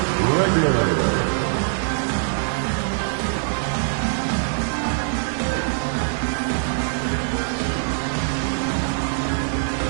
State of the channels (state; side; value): silent; left; digital silence